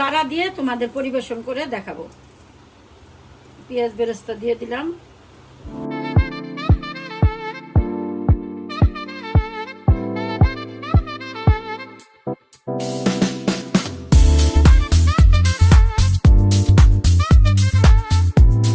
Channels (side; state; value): both; identical; correlation 1.00